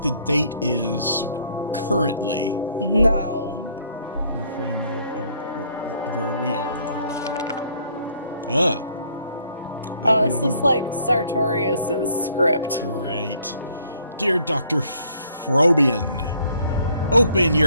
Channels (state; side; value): inverted; both; correlation -0.64